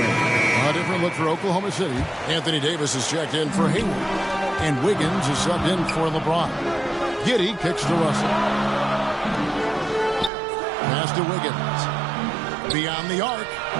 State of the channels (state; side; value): drops out; left; at 10.3 s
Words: A different look for Oklahoma City. Anthony Davis is checked in for Hayward. And Wiggins is subbed in for LeBron. Giddey kicks to Russell. Pass to Wiggins. Beyond the arc.